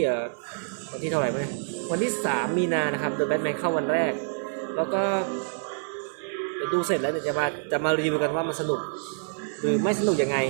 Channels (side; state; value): left; silent; 60 dB below the other